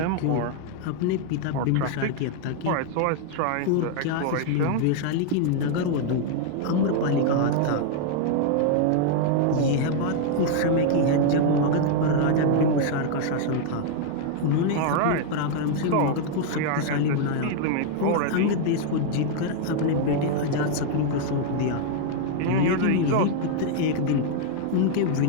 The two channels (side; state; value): both; different; correlation 0.00